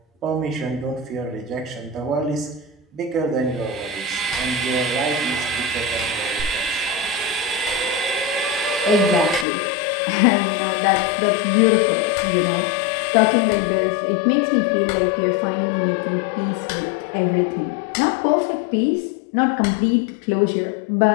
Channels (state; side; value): drops out; right; at 9.5 s